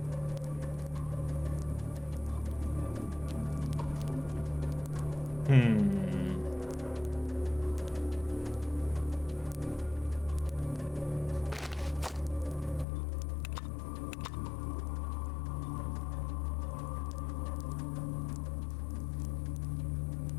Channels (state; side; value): drops out; right; at 12.9 s